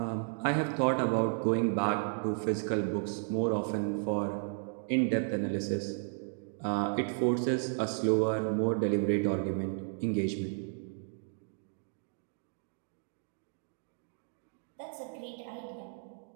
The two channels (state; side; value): silent; left; 55 dB below the other